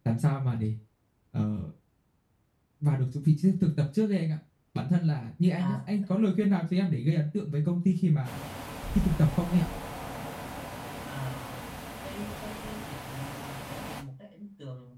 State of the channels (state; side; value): identical; both; correlation 1.00